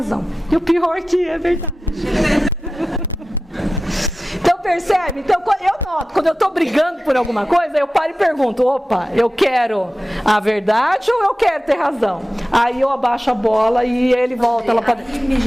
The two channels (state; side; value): normal; both; correlation 0.94